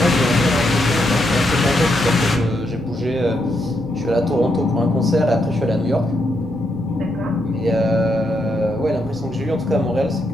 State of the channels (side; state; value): both; normal; correlation 0.79